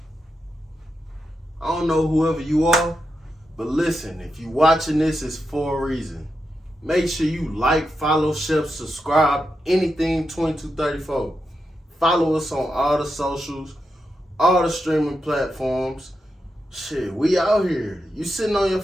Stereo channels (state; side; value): normal; both; correlation 0.87